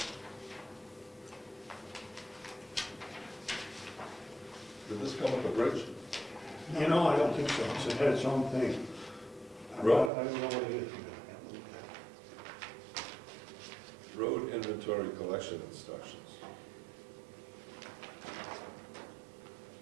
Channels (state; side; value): drops out; left; at 10.1 s